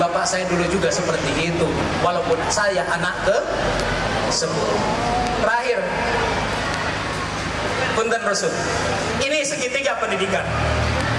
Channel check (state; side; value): identical; both; correlation 1.00